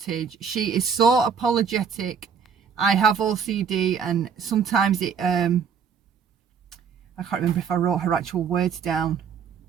she is so apologetic. I have OCD, and sometimes I can't remember if I wrote her actual words down.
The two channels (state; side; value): quieter; left; 6.7 dB